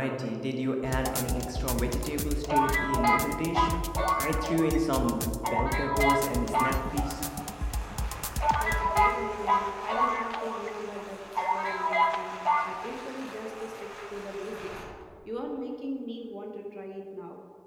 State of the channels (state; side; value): identical; both; correlation 1.00